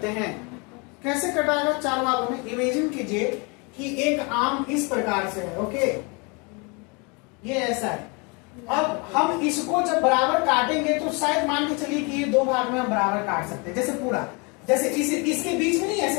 हैं? कैसे कटाएगा 4 भागों में? इमेजिन कीजिए कि एक आम इस प्रकार से है, ओके, ये ऐसा है। अब हम इसको जब बराबर काटेंगे तो शायद मान के चलिए कि ये 2 भाग में हम बराबर काट सकते हैं, जैसे पूरा, जैसे इसके बीच में नहीं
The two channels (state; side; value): quieter; right; 31.0 dB